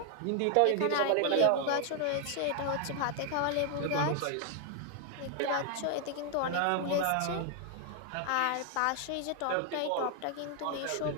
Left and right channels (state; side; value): different; both; correlation 0.00